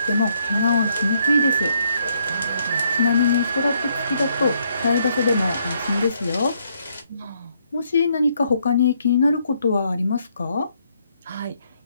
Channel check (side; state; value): both; inverted; correlation -0.72